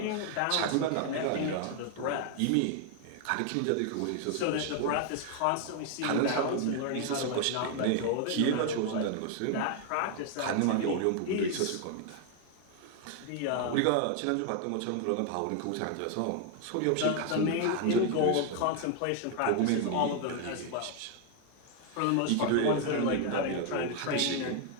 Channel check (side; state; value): both; different; correlation 0.00